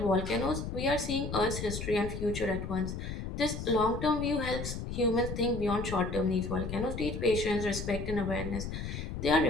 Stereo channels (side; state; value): left; noise; rumble, 6 dB below the sound